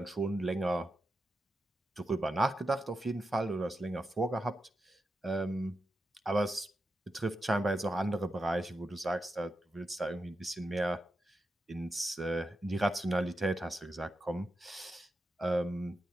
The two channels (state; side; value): normal; both; correlation 0.88